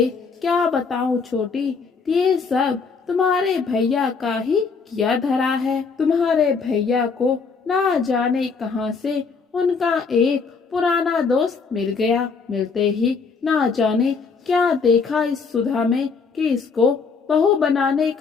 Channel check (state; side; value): quieter; right; 5.1 dB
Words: क्या बताऊं छोटी, ये सब तुम्हारे भैया का ही किया धरा है। तुम्हारे भैया को ना जाने कहां से उनका एक पुराना दोस्त मिल गया। मिलते ही ना जाने क्या देखा इस सुधा में कि इसको बहू बनाने